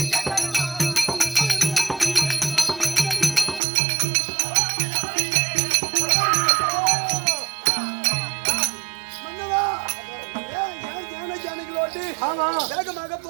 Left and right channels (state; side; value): drops out; left; at 3.6 s